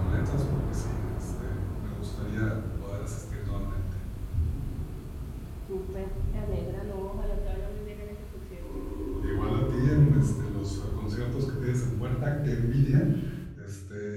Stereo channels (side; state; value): both; identical; correlation 1.00